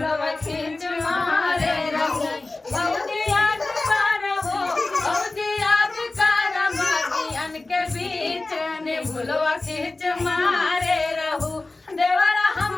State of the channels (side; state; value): right; quieter; 3.2 dB